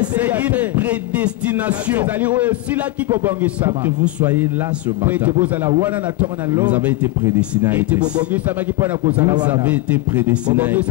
c'est une prédestination pour que vous soyez là ce matin. Vous avez été prédestiné à être ici. Vous avez été prédestiné à être ici.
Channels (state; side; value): quieter; right; 19.3 dB